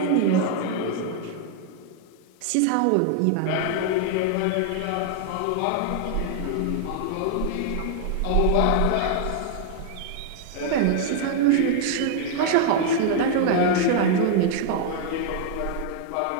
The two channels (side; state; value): both; different; correlation 0.00